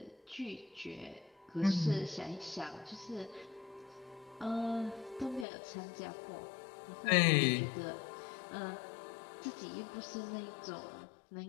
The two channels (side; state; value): right; drops out; at 5.5 s